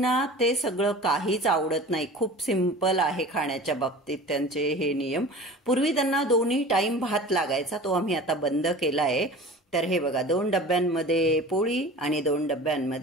ते सगळं काहीच आवडत नाही। खूप सिंपल आहे खाण्याच्या बाबतीत त्यांचे हे नियम। पूर्वी त्यांना दोन्ही टाइम भात लागायचा, तो आम्ही आता बंद केला आहे। तर हे बघा 2 डब्यांमध्ये पोळी आणि 2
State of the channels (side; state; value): both; normal; correlation 0.39